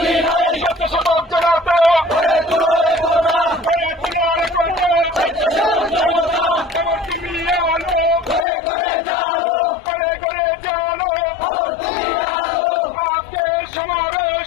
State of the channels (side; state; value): right; drops out; at 8.5 s